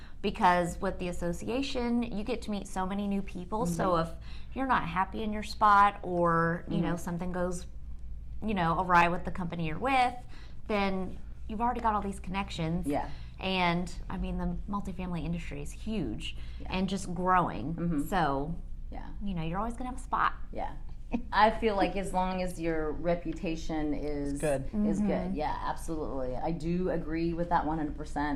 Because with the association, you get to meet so many new people. So if you're not happy in your spot, or something goes awry with the company you're with, then you've already got all these connections. Yeah. And the multifamily industry is huge and just growing. So you're always gonna have a spot. Yeah. I feel like as long as your reputation is good, yeah, absolutely. I do agree with that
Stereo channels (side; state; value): both; identical; correlation 1.00